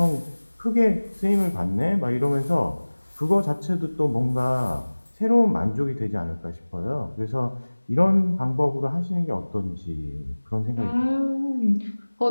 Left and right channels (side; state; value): both; inverted; correlation -1.00